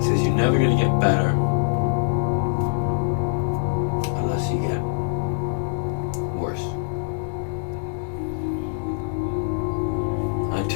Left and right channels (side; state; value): right; silent; digital silence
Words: you're never going to get better unless you get worse. I